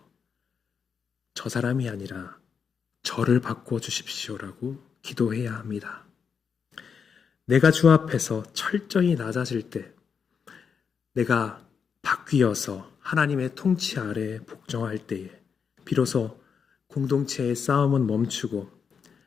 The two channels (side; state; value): right; quieter; 6.4 dB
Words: 저 사람이 아니라 저를 바꾸어 주십시오라고 기도해야 합니다. 내가 주 앞에서 철저히 낮아질 때 내가 바뀌어서 하나님의 통치 아래 복종할 때에 비로소 공동체의 싸움은 멈추고